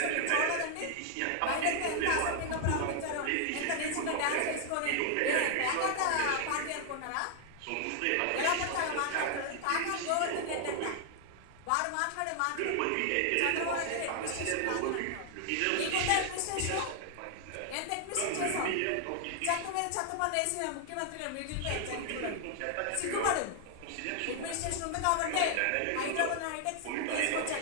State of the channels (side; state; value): both; different; correlation 0.00